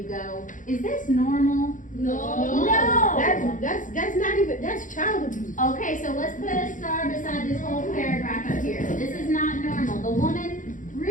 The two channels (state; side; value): late; right; 0.38 ms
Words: go. Is this normal? No. No. That's not even, that's child abuse. Okay, so let's put a star beside this whole paragraph up here. This is not normal. The woman